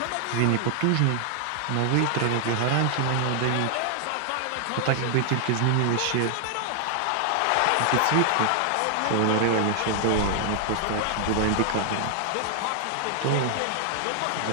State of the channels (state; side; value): different; both; correlation 0.00